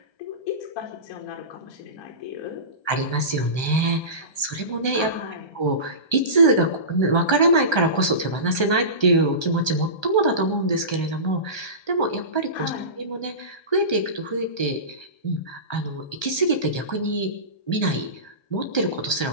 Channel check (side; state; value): right; late; 1.3 ms